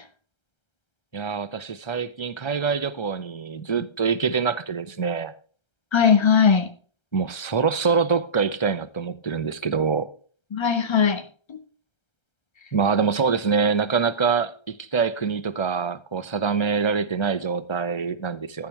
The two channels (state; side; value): late; right; 1.3 ms